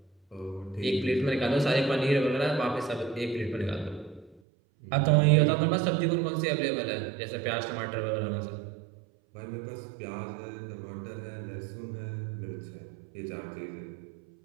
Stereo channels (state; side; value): drops out; left; at 4.4 s